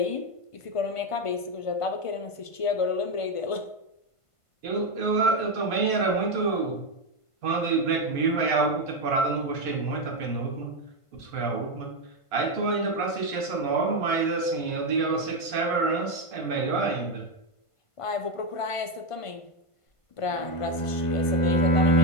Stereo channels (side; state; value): right; late; 1.5 ms